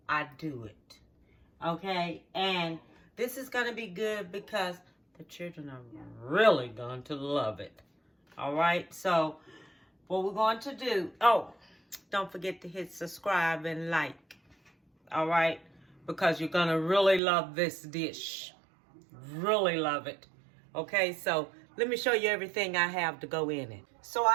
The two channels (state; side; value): drops out; left; at 17.2 s